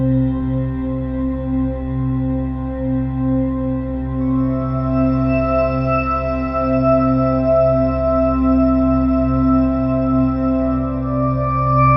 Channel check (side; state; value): both; identical; correlation 1.00